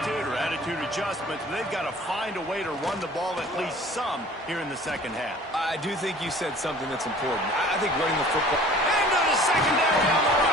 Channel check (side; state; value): both; normal; correlation 0.48